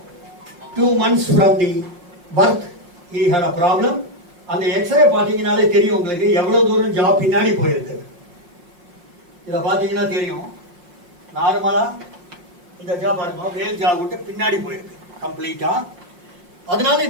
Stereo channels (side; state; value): left; late; 5.7 ms